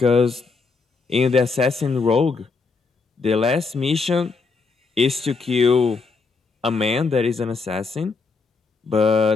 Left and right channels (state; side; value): quieter; right; 4.4 dB